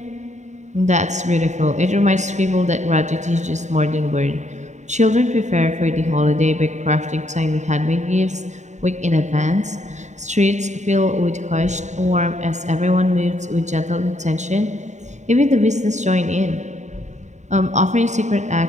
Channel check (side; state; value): left; late; 0.34 ms